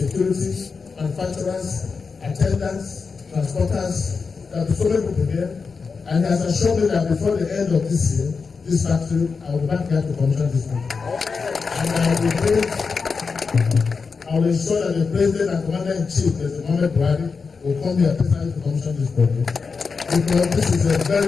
manufacturers, attendants, transporters. There will be so many people here, and he has assured me that before the end of this year, this factory, I will be back here to commission this factory. And I will ensure that the President and Commander-in-Chief, President Mohamed Buhari, will come here personally to commission this project, because this is a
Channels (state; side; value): quieter; right; 5.0 dB